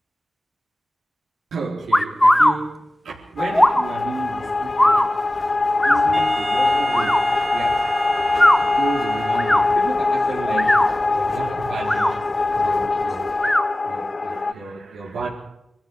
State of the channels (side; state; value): both; normal; correlation 0.97